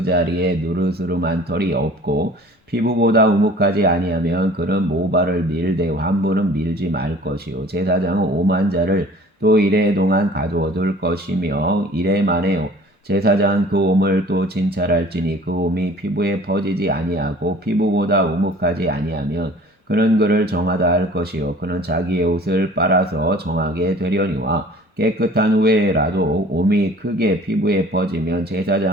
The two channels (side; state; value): both; normal; correlation 0.48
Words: 자리에 누르스름한 털이 없고 피부보다 우묵하지 아니하면 그는 모발을 밀되 환부는 밀지 말 것이요 제사장은 오만 자를 또 이래 동안 가두어둘 것이며 이래 만에 제사장은 그 옴을 또 진찰할지니 그 옴이 피부에 퍼지지 아니하고 피부보다 우묵하지 아니하면 그는 그를 정하다 할 것이요 그는 자기의 옷을 빨아서 정하게 되려니와 깨끗한 후에라도 옴이 크게 피부에 퍼지면